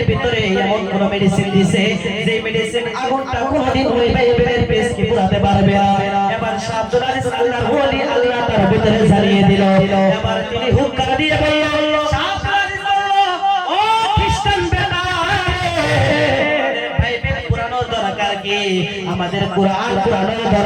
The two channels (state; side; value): identical; both; correlation 1.00